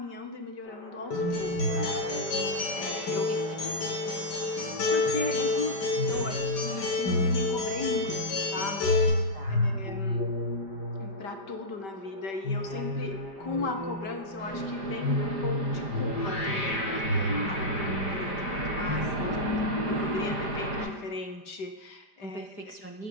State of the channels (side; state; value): right; late; 5.1 ms